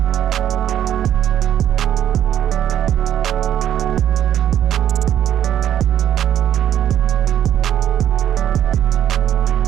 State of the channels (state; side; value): quieter; left; 10.6 dB